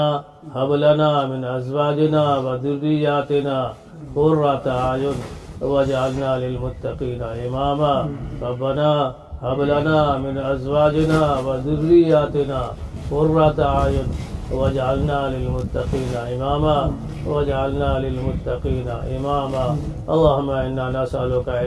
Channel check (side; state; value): both; identical; correlation 1.00